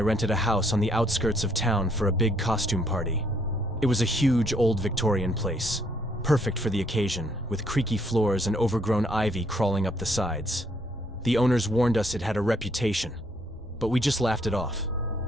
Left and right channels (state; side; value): normal; both; correlation 0.68